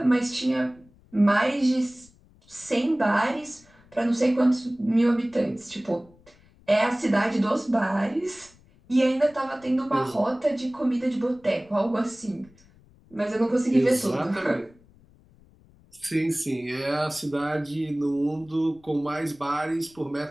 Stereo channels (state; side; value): noise; left; rumble, 28 dB below the sound